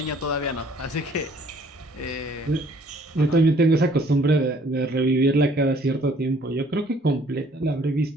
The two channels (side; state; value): both; normal; correlation 0.59